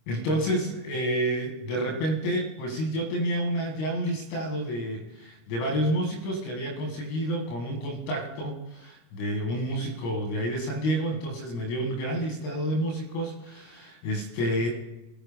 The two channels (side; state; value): right; late; 26 ms